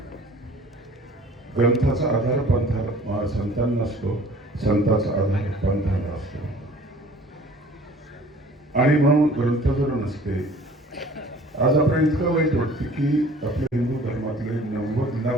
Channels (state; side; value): normal; both; correlation 0.50